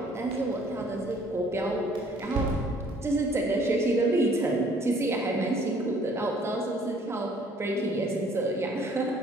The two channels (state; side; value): normal; both; correlation 0.58